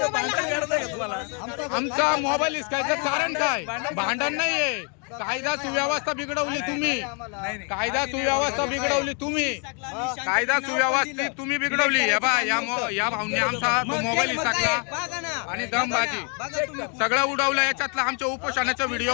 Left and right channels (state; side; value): quieter; right; 37.7 dB